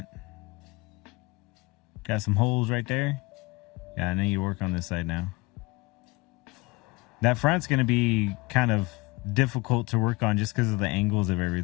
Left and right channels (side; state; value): right; quieter; 23.7 dB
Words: Got some holes right there. Yeah, I need to work on this side now. That front's going to be kind of difficult to work on just because of the angles of